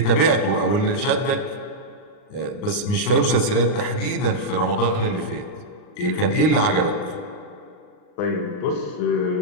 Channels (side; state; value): right; late; 39 ms